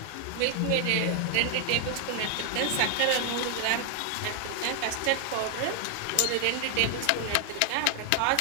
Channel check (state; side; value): different; both; correlation 0.00